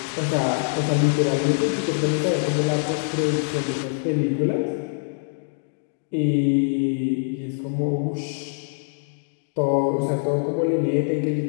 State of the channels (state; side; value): silent; right; digital silence